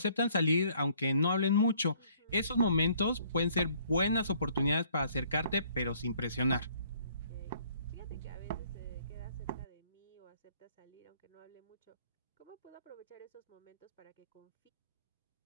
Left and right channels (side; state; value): both; inverted; correlation -0.61